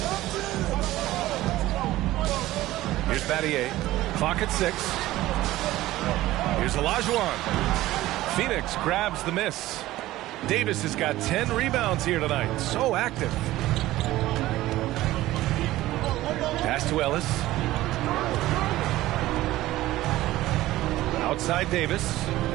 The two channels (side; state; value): left; quieter; 16.2 dB